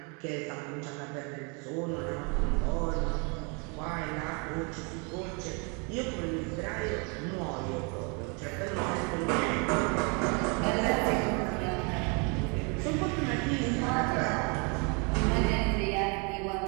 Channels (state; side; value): quieter; left; 33.5 dB